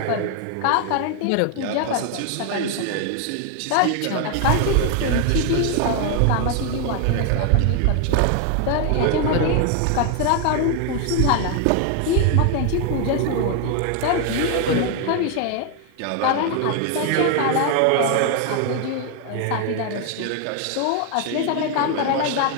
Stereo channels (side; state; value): both; different; correlation 0.01